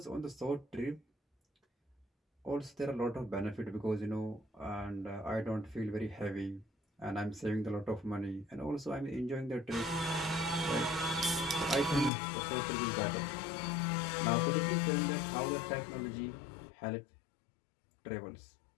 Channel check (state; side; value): drops out; right; at 12.1 s